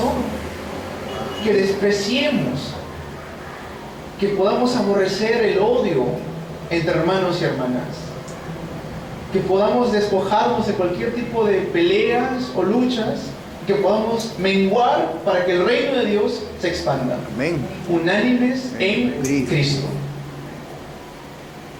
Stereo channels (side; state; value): both; identical; correlation 1.00